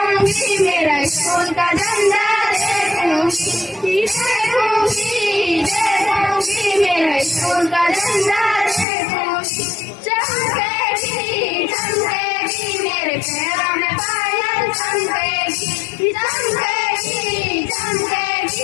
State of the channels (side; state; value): right; drops out; at 8.8 s